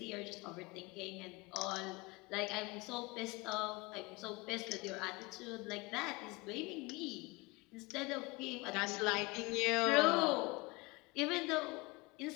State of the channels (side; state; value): right; quieter; 24.8 dB